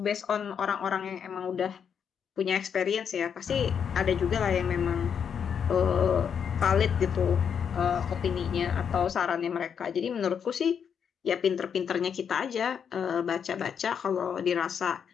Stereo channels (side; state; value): right; quieter; 7.4 dB